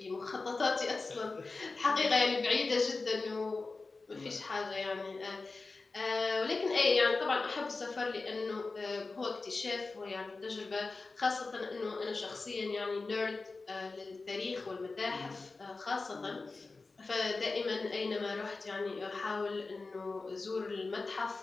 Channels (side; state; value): right; quieter; 3.8 dB